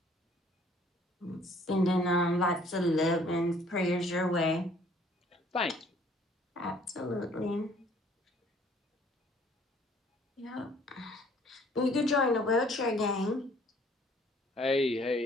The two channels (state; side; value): normal; both; correlation 0.58